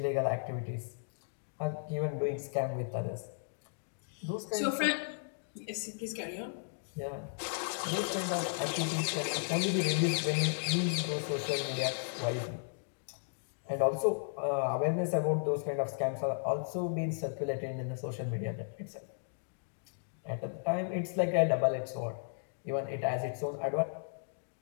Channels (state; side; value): silent; right; digital silence